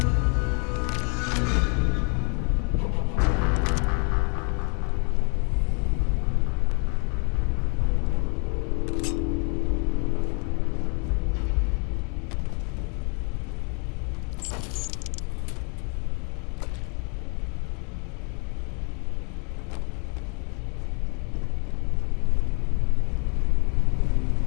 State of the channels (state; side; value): quieter; right; 37.3 dB